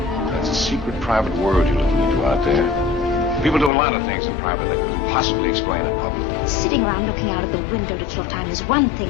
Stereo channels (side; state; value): right; drops out; at 3.7 s